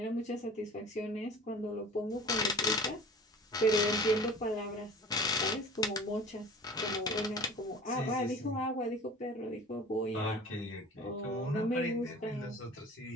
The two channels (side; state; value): both; normal; correlation 0.41